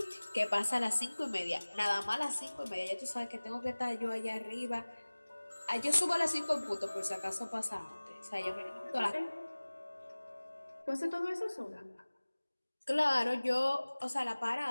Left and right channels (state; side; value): inverted; both; correlation -1.00